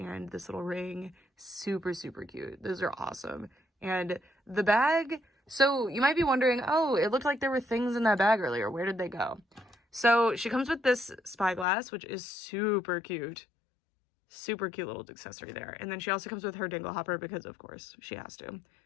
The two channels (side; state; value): right; drops out; at 11.7 s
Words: this little ring, super, super cute. Those are awesome. And the bag, so you might be wondering, oh, it looked like there were things in that bag earlier. Where did they go? So she comes with this spyglass, which is super cute. Super cute little accessory there. And then she also comes with her dingle hopper because, of course, she has to.